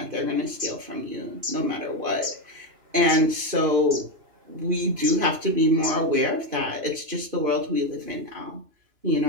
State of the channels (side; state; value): left; late; 2.9 ms